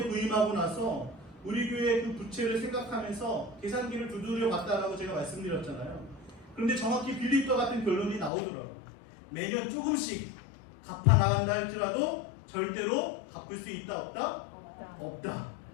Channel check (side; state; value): right; drops out; at 8.3 s